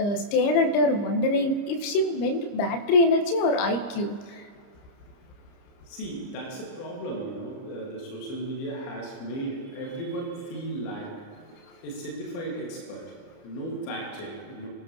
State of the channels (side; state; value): right; late; 30 ms